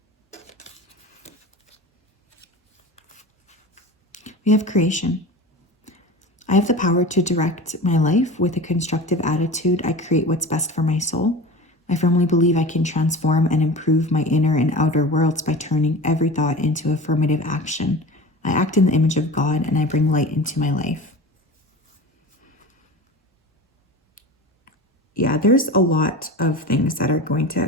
We have creation. I have the power to direct my life with a constructive attitude. I create what's best for my soul. I firmly believe I can transform and improve my inner and outer worlds by turning every thought into affirmative action. I act in the image of God and I bring light into my life. Yeah, there's a lot of things that are going to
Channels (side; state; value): both; normal; correlation 0.33